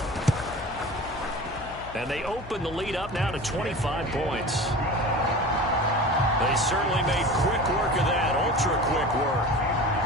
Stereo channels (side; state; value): left; noise; hum, 17 dB below the sound